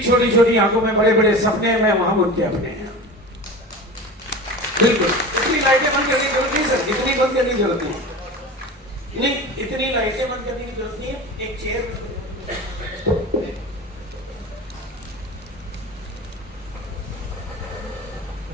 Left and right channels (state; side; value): normal; both; correlation 0.32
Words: छोटी छोटी आंखों में बड़े बड़े सपने हैं, मैं वहां उनके अपने हैं। बिल्कुल इतनी लाइटें बंद करने की जरूरत नहीं सर, इतनी बंद करने की जरूरत नहीं, इतनी लाइटें बंद करने की जरूरत नहीं है। एक चेयर